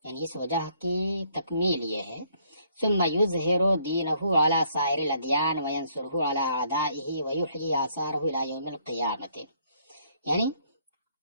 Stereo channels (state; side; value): inverted; both; correlation -0.67